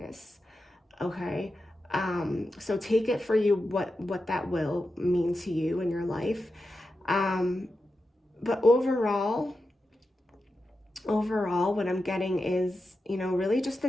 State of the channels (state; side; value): normal; both; correlation 0.90